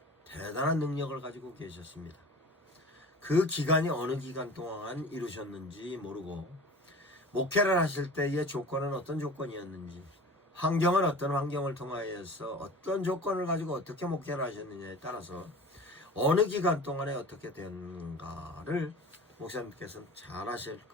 대단한 능력을 가지고 계셨습니다. 그 기간이 어느 기간 동안 이루셨는지 모르고, 목회를 하실 때의 조건은 어떤 조건이었는지, 환경은 어떤 환경을 통하여서 어떤 조건을 가지고 어떻게 목회를 하셨느냐에 따라서 어느 기간 동안에 어떻게 되는가를 목사님께서는 잘 아실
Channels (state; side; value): normal; both; correlation 0.39